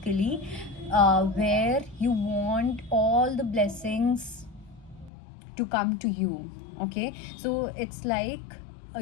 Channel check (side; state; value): right; drops out; at 5.1 s